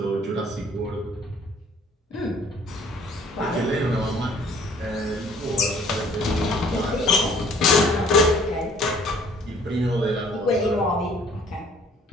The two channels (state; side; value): normal; both; correlation 0.57